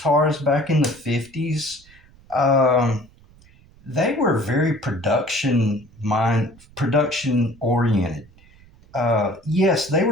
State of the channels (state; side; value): noise; right; rumble, 27 dB below the sound